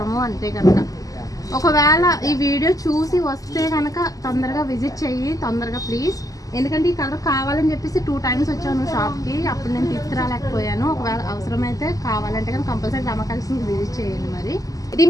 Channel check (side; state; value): right; late; 0.17 ms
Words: అంతే కనుక. ఒకవేళ ఈ వీడియో చూసి వస్తే కనుక తొందరగా విజిట్ చెయ్యి, తొందరగా ప్లీజ్. ఎందుకంటే ఈ కలర్ కావాలని చెప్పేసి 2 times వచ్చాను షాప్కి, అప్పుడు నేను తీసుకురాలేకపోయాను. ఒకవేళ అవసరమైతే కావాలంటే కానీ కంపల్సరీ రమ కలెక్షన్కి విజిట్ చేయండి. మరి